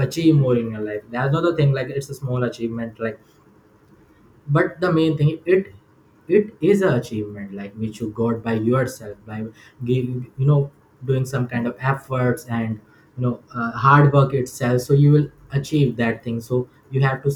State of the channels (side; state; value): both; identical; correlation 1.00